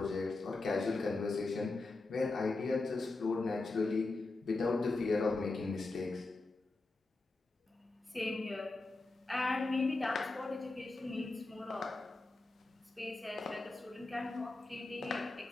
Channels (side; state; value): right; quieter; 3.3 dB